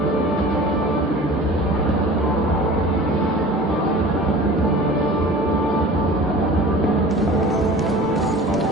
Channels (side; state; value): both; normal; correlation 0.40